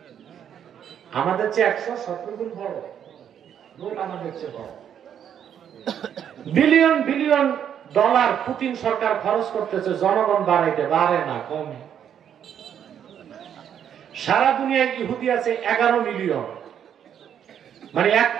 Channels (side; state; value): left; quieter; 9.1 dB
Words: আমাদের চেয়ে 117 গুণ বড় লোক, আমাদের চেয়ে বড়। বিলিয়ন বিলিয়ন ডলার পুতিন সরকার খরচ করতেছে জনগণ বাড়াইতে, বাড়ে না, কমে। সারা দুনিয়ায় ইহুদি আছে 11 মিলিয়ন, মানে 1